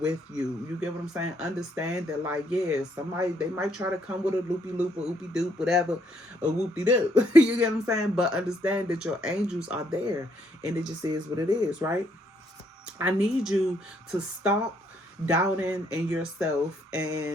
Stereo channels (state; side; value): normal; both; correlation 0.70